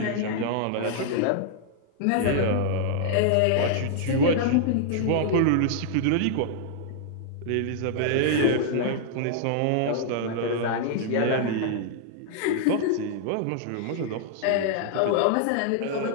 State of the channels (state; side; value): different; both; correlation -0.01